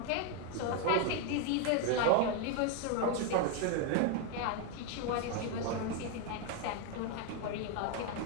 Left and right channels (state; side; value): different; both; correlation 0.01